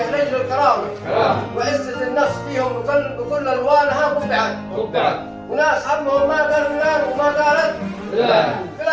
رجل الكرامة وعزة النفس فيهم بكل ألوانها قبعت. وناس همهم ما قال فلان وما قالت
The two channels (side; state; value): both; identical; correlation 1.00